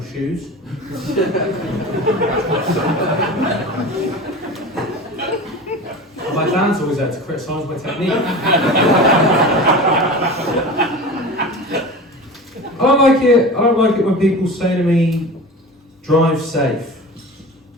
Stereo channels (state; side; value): normal; both; correlation 0.33